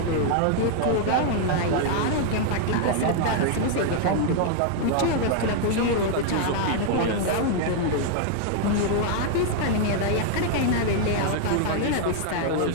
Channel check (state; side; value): different; both; correlation 0.00